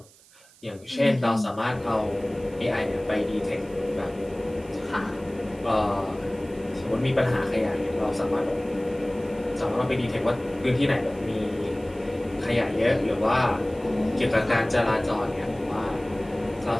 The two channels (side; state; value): right; noise; hiss, 26 dB below the sound